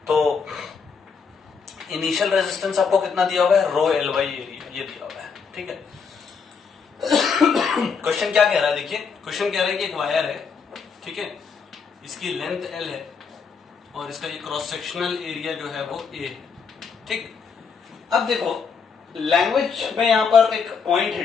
तो इनिशियल रेजिस्टेंस आपको कितना दिया हुआ है रो एल बाई एरिया, ये दिया हुआ है, ठीक है। क्वेश्चन क्या कह रहा है देखिए, क्वेश्चन कह रहा है कि एक वायर है, ठीक है, इसकी लेंथ एल है और इसका ये क्रॉस सेक्शनल एरिया जो है वो ए है, ठीक। अब देखो लैंग्वेज में यहां पर एक पॉइंट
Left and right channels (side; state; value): right; quieter; 5.8 dB